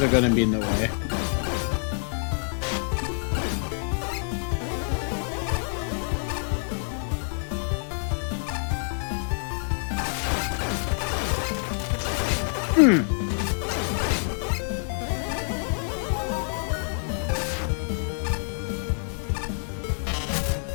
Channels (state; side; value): silent; right; 60 dB below the other